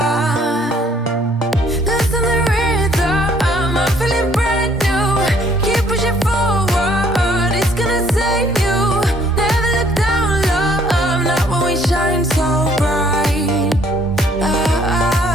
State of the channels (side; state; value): both; normal; correlation 0.62